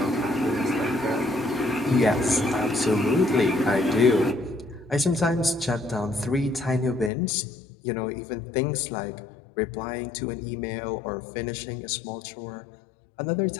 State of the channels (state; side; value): drops out; right; at 7.1 s